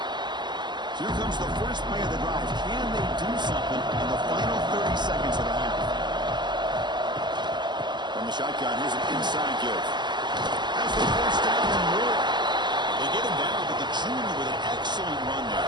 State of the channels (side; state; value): left; late; 0.21 ms